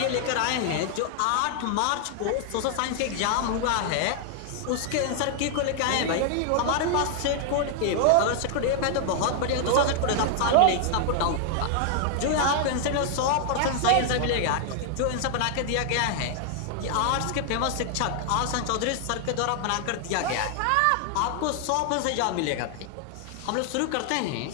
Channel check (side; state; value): both; different; correlation 0.00